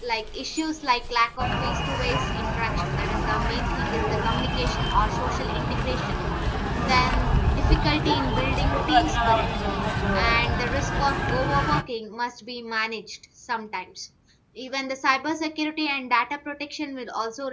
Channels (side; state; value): both; identical; correlation 1.00